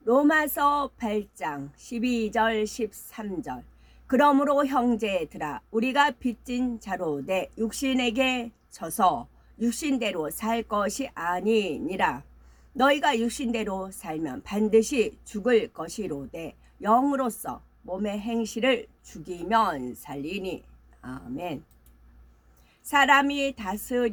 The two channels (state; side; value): identical; both; correlation 1.00